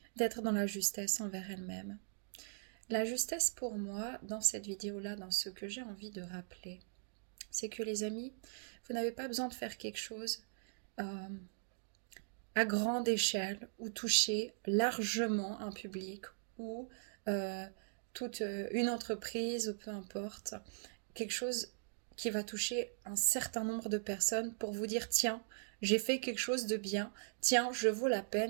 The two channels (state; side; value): silent; left; digital silence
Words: d'être dans la justesse envers elles-mêmes. La justesse pour moi, dans cette vidéo-là, dans ce que j'ai envie de rappeler, c'est que les amis, vous n'avez pas besoin de faire quelque chose euh, à grande échelle ou toucher largement un public ou euh, toute une entreprise ou peu importe, quelque chose qui va toucher un certain nombre de personnes pour vous dire tiens, j'ai fait quelque chose de bien, tiens, je vaux la